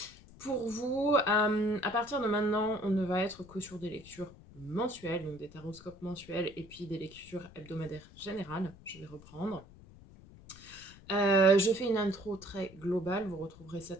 Pour vous, à partir de maintenant, on ne va être que sur des lectures mensuelles, donc des taroscopes mensuels et puis des lectures hebdomadaires générales. Je vais reprendre. Je fais une intro très globale. Vous retrouverez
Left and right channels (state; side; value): noise; left; rumble, 21 dB below the sound